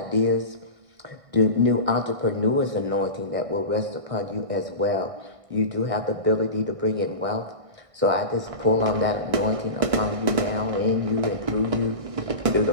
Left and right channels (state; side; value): late; left; 1.6 ms